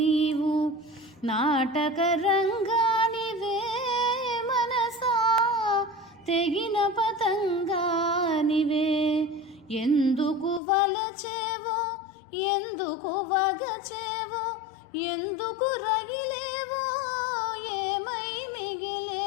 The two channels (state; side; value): drops out; right; at 10.6 s